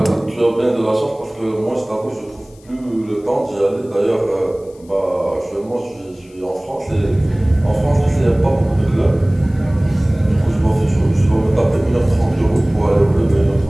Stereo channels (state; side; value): noise; left; hiss, 29 dB below the sound